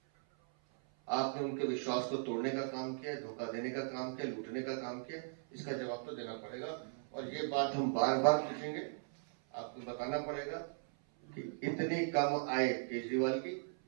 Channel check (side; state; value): left; silent; 52 dB below the other